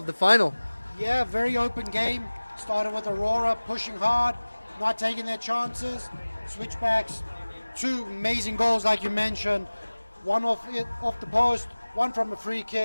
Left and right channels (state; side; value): inverted; both; correlation -1.00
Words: the final? Yeah, very open game. Started with Aurora pushing hard, not taking their chances. Switchbacks, two amazing goals like you mentioned. One off the post, one from a free